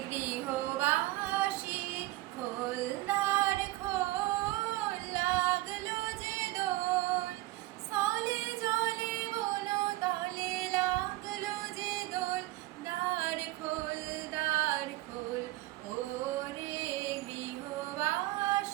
গৃহবাসী খোলনার খোল লাগলো যে দোল স্থলে জলে বন তলে লাগলো যে দোল দ্বার খোল ওরে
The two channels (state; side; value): quieter; left; 18.6 dB